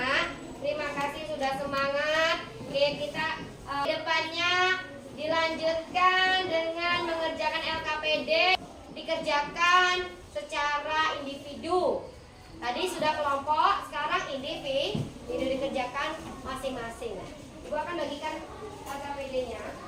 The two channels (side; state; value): both; identical; correlation 1.00